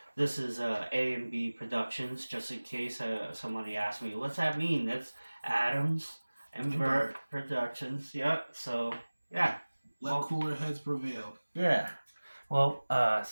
This is A&B Productions, just in case somebody asked me, what's that mean? That's Adams and Burt Productions. Yep. So, yeah. Let cooler heads prevail. Yeah. Well,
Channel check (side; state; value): both; inverted; correlation -1.00